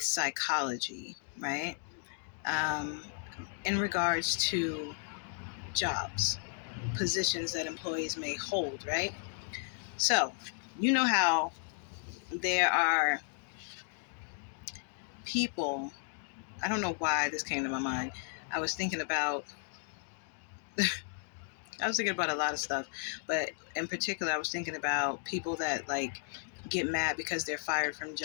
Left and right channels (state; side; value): silent; right; 55 dB below the other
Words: psychology, right? Um, in regards to jobs, positions that employees may hold, right? So, you know how there are people, I don't know why this came to my mind. I was thinking about I was thinking about a lot of stuff, but in particular, I was thinking about people that like get mad because they're fired from